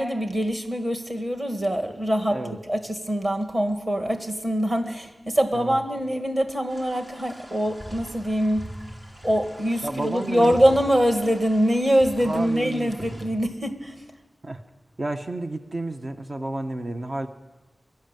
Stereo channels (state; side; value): normal; both; correlation 0.95